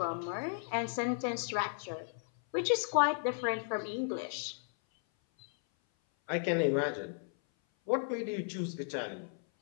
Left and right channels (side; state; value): right; silent; 55 dB below the other